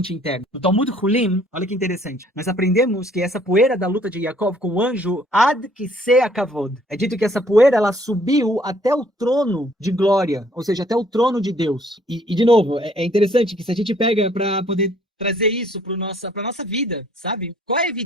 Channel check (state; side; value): normal; both; correlation 0.61